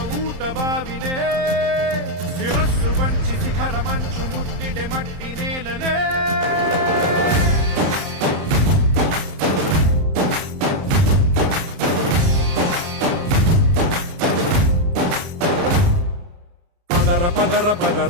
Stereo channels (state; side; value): late; left; 31 ms